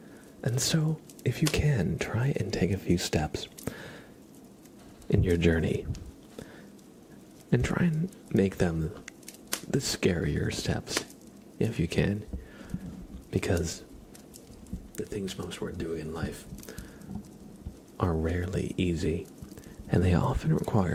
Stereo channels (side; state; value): both; identical; correlation 1.00